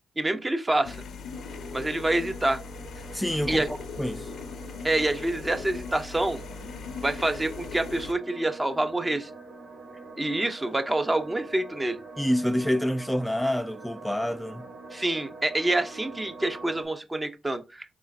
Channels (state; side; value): normal; both; correlation 0.95